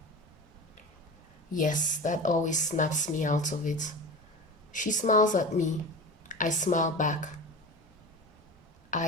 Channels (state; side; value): normal; both; correlation 0.30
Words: Yes, that always snaps me out of it. She smiles at me. I smile back.